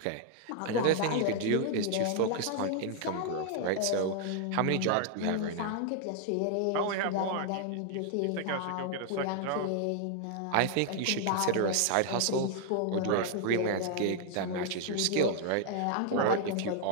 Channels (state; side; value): different; both; correlation 0.00